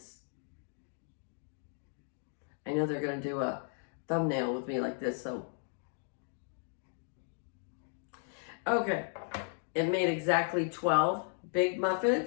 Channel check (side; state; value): right; silent; 54 dB below the other